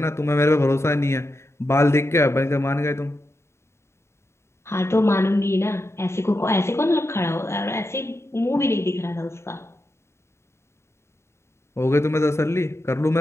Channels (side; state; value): right; late; 0.13 ms